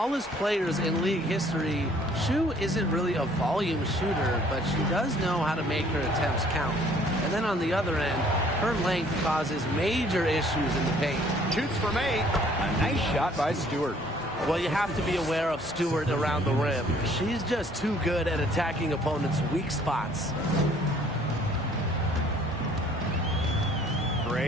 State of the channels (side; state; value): both; normal; correlation 0.58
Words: players in league history. Shu isn't really a volume shooter, but she does know how to make her attempts count. And then on the other end, her length causes major issues in the paint. Shoots from 8. A nice shot by Stewart. Well, you have to be aware of Stewart around the rim. She's just too good at attacking opponents' weak spots.